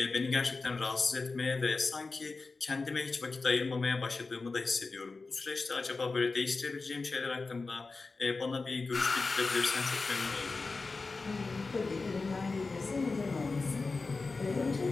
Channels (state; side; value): quieter; right; 3.9 dB